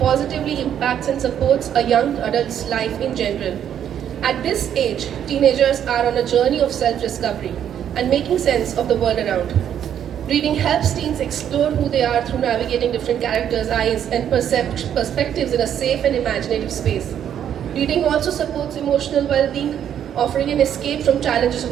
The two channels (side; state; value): left; quieter; 9.6 dB